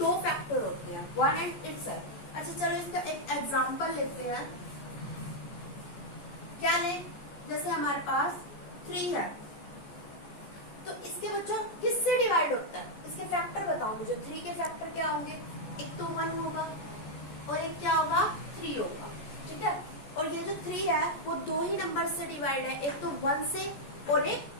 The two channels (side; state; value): right; late; 14 ms